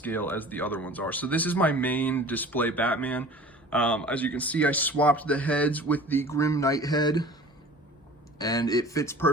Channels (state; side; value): normal; both; correlation 0.43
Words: as the other ones are. So this is my main display Batman. As you can see, I swapped the heads with the Grim Knight head, and it fits